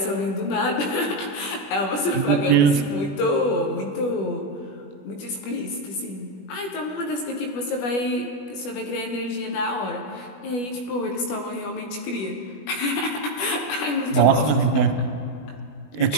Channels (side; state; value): right; late; 20 ms